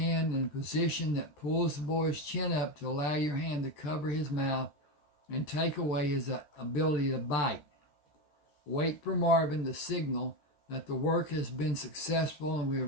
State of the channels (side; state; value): right; late; 14 ms